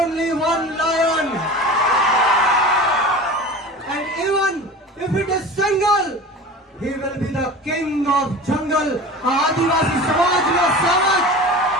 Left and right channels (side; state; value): both; normal; correlation 0.35